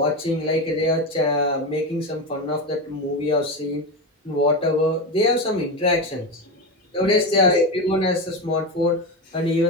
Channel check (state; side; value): normal; both; correlation 0.17